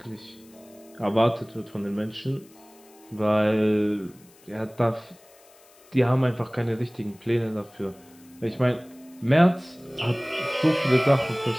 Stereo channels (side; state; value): left; noise; hiss, 27 dB below the sound